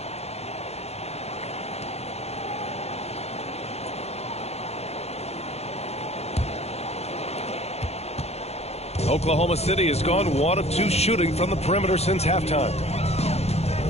Oklahoma City has gone 1 of 2 shooting from the perimeter since halftime.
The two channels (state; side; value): late; right; 0.31 ms